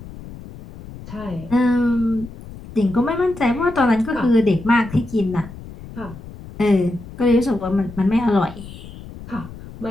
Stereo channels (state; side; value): noise; left; rumble, 15 dB below the sound